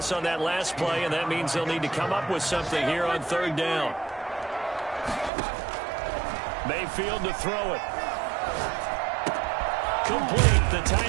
on that last play, and that means they'll need to come up with something here on 3rd down. Mayfield to throw it. Complete. The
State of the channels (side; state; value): left; drops out; at 5.3 s